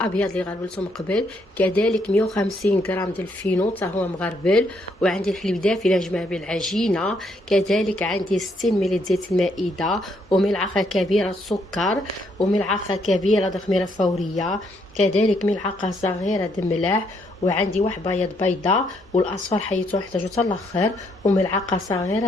اللي غربلته من قبل، كذلك 150 غرام ديال الفينو حتى هو مغربل، وعندي الحليب دافي لنجمع به العجينه، كذلك عندي 60 ملل زيت المائده، وملعقه كبيره سكر، وملعقه كبيره خميره فوريه، كذلك ملعقه صغيره د ملح، وعندي واحد بيض بيضه، والاصفر حيتو نحتاجو حتى الاخر، وملعقه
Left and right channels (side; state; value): both; normal; correlation 0.72